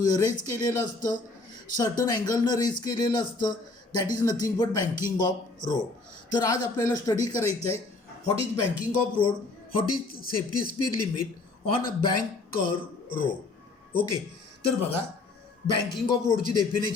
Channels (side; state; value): right; quieter; 3.5 dB